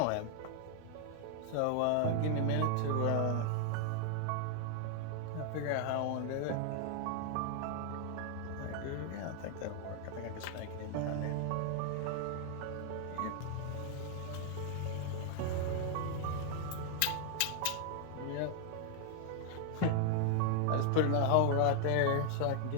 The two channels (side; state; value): both; different; correlation 0.00